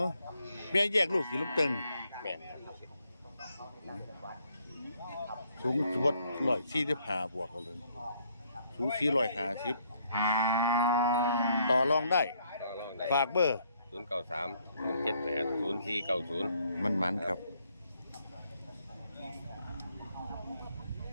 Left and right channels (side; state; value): both; inverted; correlation -0.69